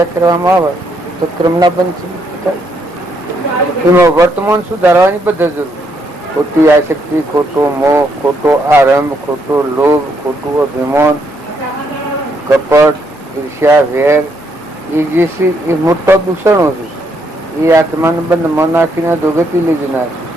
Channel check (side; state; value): both; normal; correlation 0.74